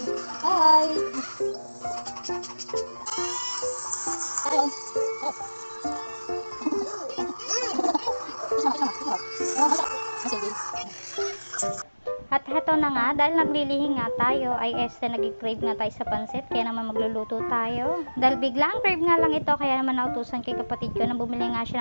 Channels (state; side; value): inverted; both; correlation -1.00